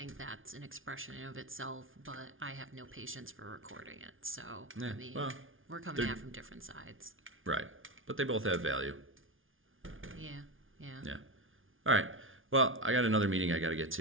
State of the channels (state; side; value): late; left; 0.58 ms